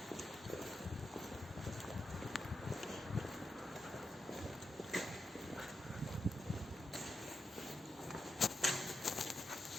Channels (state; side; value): normal; both; correlation 0.87